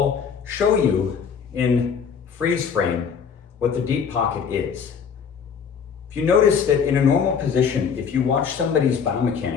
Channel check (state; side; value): quieter; right; 6.7 dB